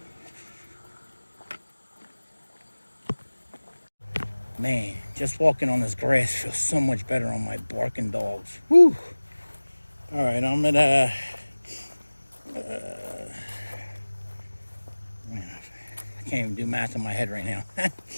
Man, just walking on this grass feels so much better on my barking dogs. Whew. All right, I'm at Man, I can't even do math in my head right now.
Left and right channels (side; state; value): both; inverted; correlation -1.00